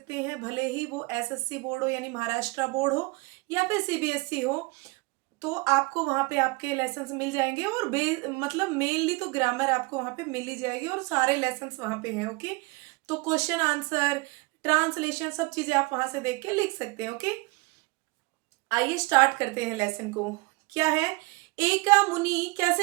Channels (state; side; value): quieter; left; 26.1 dB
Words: हैं, भले ही वो SSC बोर्ड हो यानी महाराष्ट्र बोर्ड हो या फिर CBSE हो, तो आपको वहाँ पे आपके लेसन्स मिल जाएंगे। और मतलब मेनली तो ग्रामर आपको वहाँ पे मिल ही जाएगी और सारे लेसन्स वहाँ पे हैं। ओके, तो क्वेश्चन आंसर, ट्रांसलेशन, सब चीजें आप वहां से देख के लिख सकते हैं। ओके, आइए स्टार्ट करते हैं लेसन को। क्या है? एका मुनि, कैसे